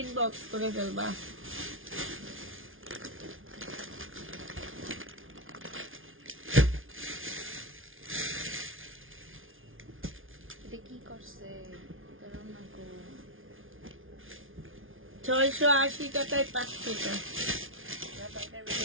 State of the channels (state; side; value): late; left; 0.58 ms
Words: ইনবক্স করে ফেলবা। এটা কি করছে? এটা রান্না কো 680 টাকায় 5 টাকা।